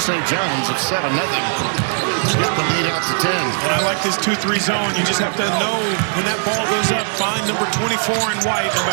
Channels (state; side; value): silent; left; 67 dB below the other